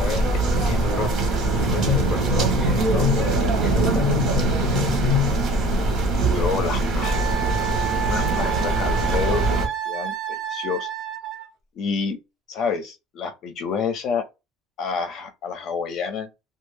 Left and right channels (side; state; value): both; normal; correlation 0.47